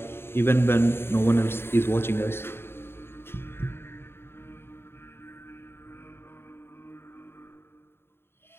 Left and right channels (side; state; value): right; late; 0.11 ms